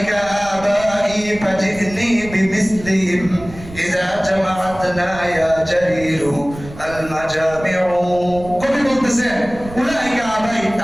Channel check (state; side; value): noise; right; rumble, 15 dB below the sound